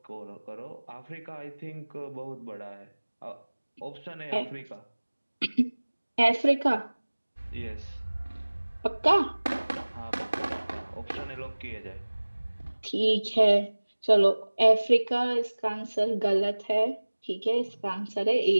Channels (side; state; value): both; inverted; correlation -1.00